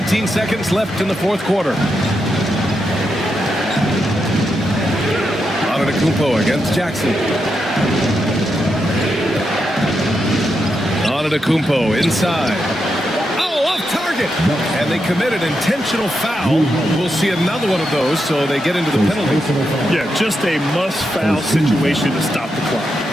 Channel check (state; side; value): normal; both; correlation 0.84